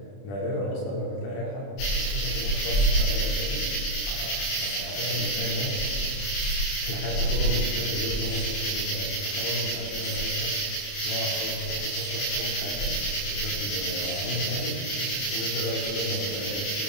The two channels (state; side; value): late; right; 30 ms